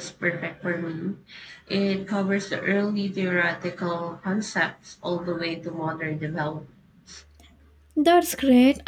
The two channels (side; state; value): both; identical; correlation 1.00